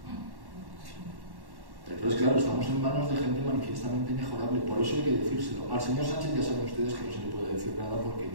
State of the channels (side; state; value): left; late; 1.1 ms